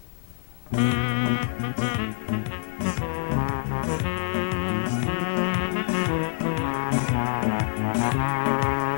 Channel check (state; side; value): silent; right; 61 dB below the other